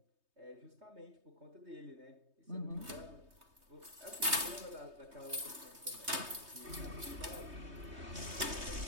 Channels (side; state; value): left; late; 3.2 ms